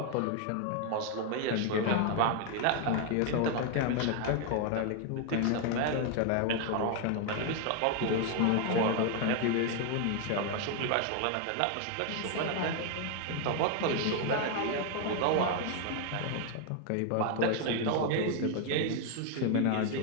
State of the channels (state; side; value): different; both; correlation 0.01